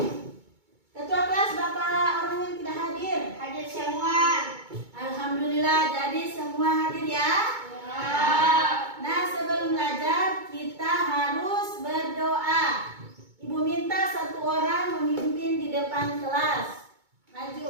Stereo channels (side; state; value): left; late; 2.2 ms